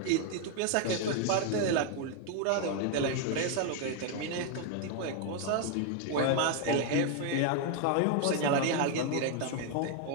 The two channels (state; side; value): different; both; correlation 0.01